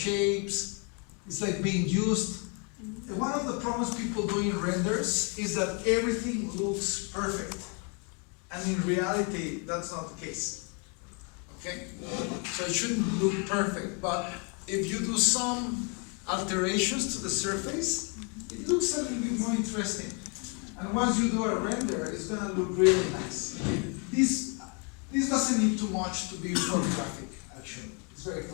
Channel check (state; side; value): quieter; right; 36.1 dB